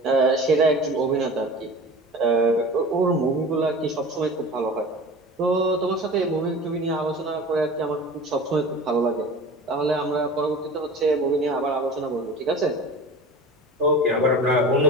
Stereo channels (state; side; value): normal; both; correlation 0.37